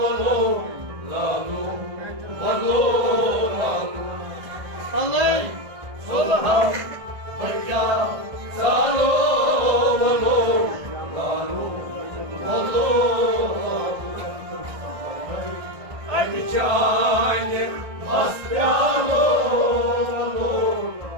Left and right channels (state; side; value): late; left; 1.6 ms